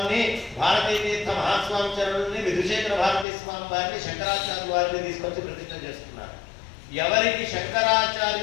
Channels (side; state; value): right; drops out; at 3.2 s